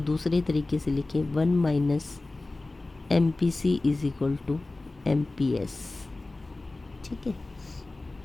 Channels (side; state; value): right; quieter; 3.1 dB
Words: दूसरे तरीके से लिखें, 1 minus MPC is equal to MPS, ठीक है।